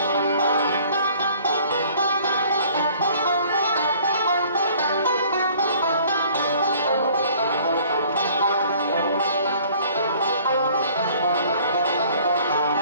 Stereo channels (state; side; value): inverted; both; correlation -0.54